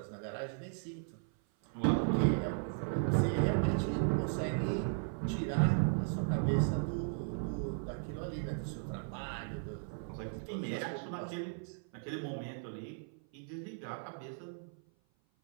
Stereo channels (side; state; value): left; silent; 54 dB below the other